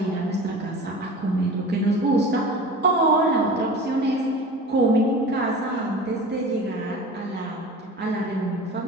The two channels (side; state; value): both; normal; correlation 0.37